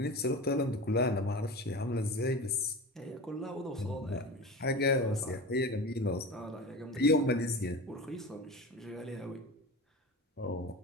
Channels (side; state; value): both; normal; correlation 0.30